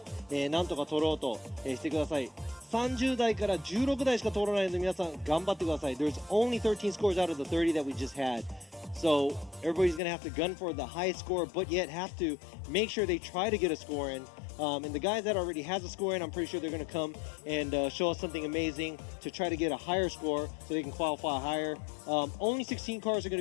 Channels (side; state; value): right; drops out; at 10.0 s